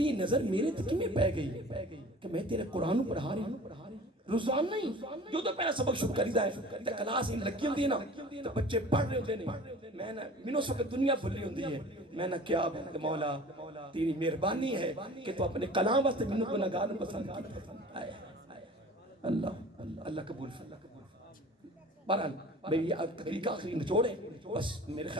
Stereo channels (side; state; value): both; normal; correlation 0.43